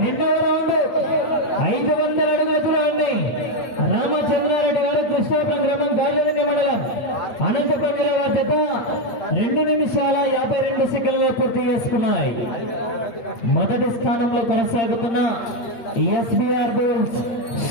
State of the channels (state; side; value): late; right; 8.8 ms